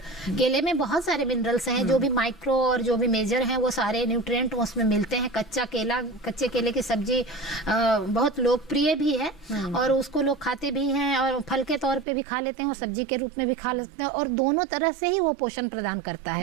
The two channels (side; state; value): left; drops out; at 12.1 s